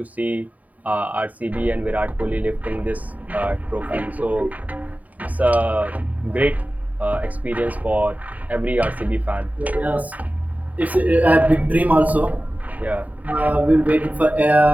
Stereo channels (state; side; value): late; left; 0.073 ms